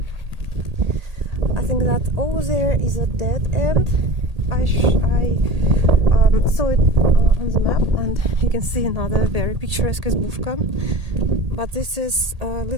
I think that over there is a dead end. I saw it on the map, and you can see another very picturesque izbushka, but this is a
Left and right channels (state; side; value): late; left; 1.8 ms